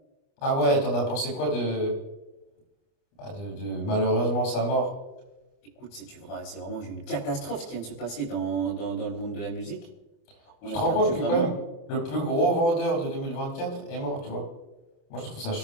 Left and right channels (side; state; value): right; late; 30 ms